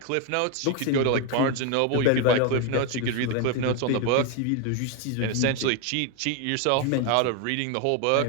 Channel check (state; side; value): different; both; correlation 0.01